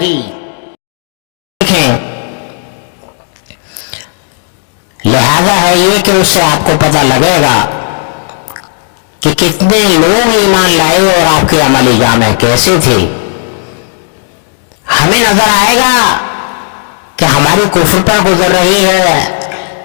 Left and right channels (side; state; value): right; silent; 65 dB below the other